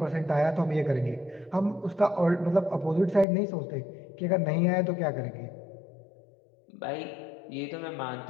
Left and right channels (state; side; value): drops out; right; at 3.2 s